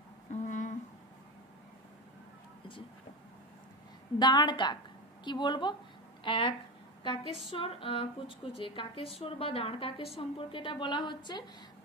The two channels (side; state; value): both; normal; correlation 0.20